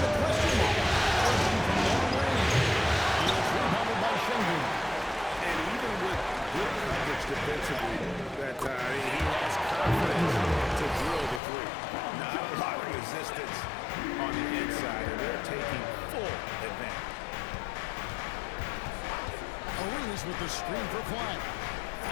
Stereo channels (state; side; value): drops out; right; at 11.4 s